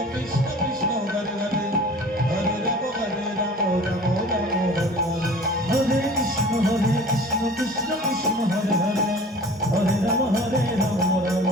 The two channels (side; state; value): both; normal; correlation 0.44